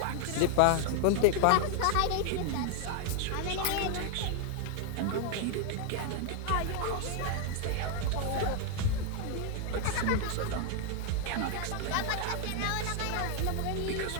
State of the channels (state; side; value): different; both; correlation 0.00